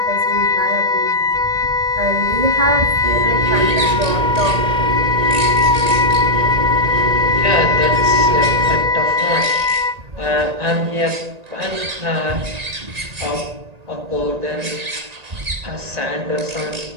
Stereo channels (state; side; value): late; left; 1.8 ms